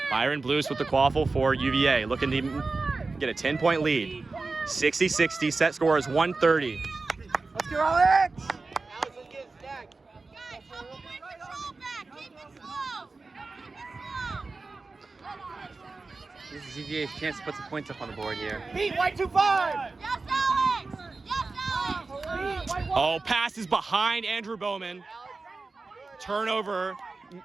Byron Blues with the quaffle for UVA, looking to get a 10-point lead. 60-60, set score is 130. Let's go, Alex! Alex, let's get stacked. Guys, help him bring control back. Keep it slow. This is UVA's chance to put some points up on the board here. Beat, white 2-5! Yes, Alex. Yes, Alex. Oh, pass is behind Andrew Bowman. Turnover,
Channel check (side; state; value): left; quieter; 3.8 dB